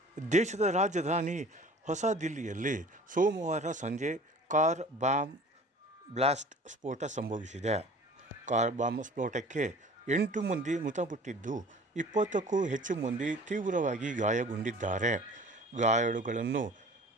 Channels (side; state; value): both; normal; correlation 0.45